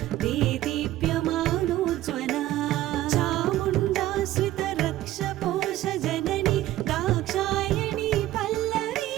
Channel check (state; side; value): quieter; left; 14.8 dB